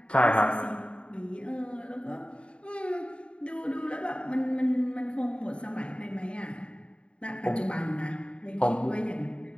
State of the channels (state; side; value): late; right; 0.057 ms